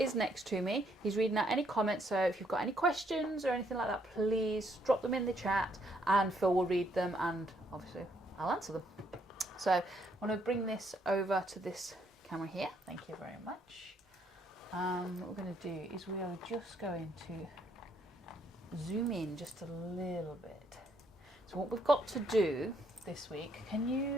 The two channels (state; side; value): normal; both; correlation 0.71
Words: next to me. He's reading out any comments, so if you've got any questions or anything like that, please drop them in the chat and Phil will read them and obviously I'll answer them. So I want to bring this over to this camera here. Thank you very much. What we're going to do is we are just going to zoom in just a little bit. So what we've got to do this week, can